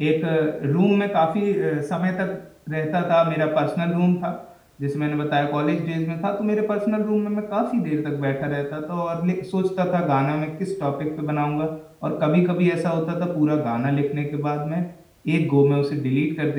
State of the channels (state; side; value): identical; both; correlation 1.00